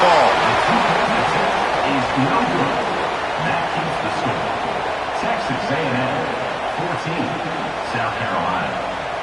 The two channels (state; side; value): noise; left; hum, 27 dB below the sound